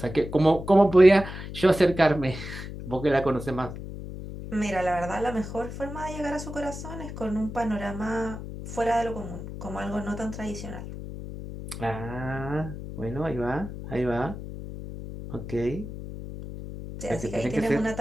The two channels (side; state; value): left; noise; hum, 9 dB below the sound